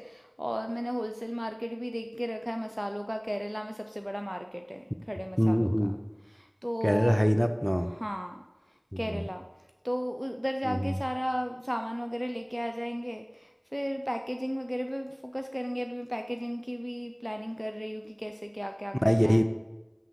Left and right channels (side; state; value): both; identical; correlation 1.00